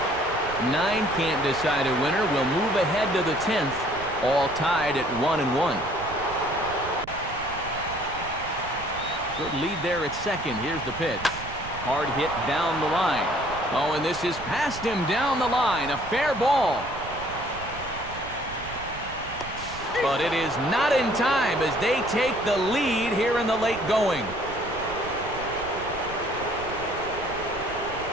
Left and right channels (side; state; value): right; noise; rumble, 14 dB below the sound